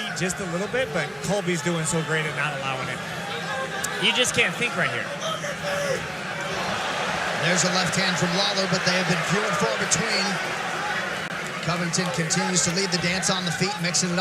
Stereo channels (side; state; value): both; identical; correlation 1.00